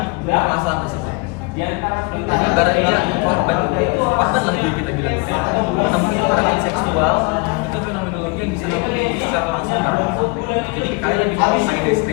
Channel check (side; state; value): right; quieter; 28.4 dB